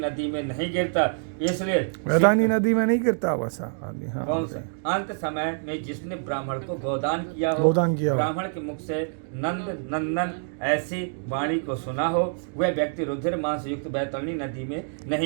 में नहीं गिरता। इसलिए बैतरणी नदी में नहीं गिरता वैसा आदमी। हाँ, कौन सा? अंत समय में जिसने ब्राह्मण को गोदान किया हो, ब्राह्मण के मुख से नंद नंदन ऐसी वाणी को सुना हो, वह व्यक्ति रुधिर मास युक्त बैतरणी नदी में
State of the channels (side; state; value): left; silent; digital silence